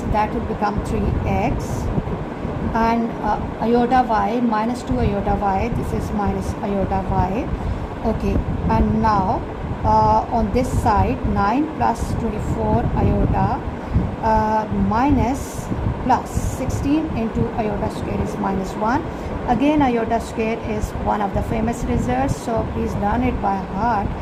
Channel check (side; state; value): both; identical; correlation 1.00